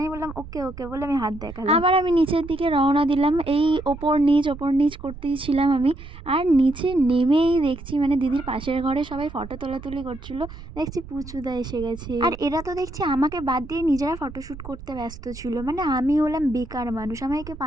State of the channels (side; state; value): right; noise; rumble, 14 dB below the sound